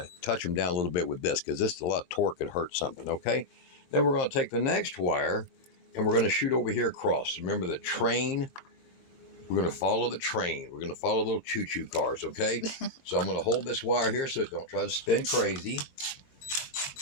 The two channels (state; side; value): late; right; 22 ms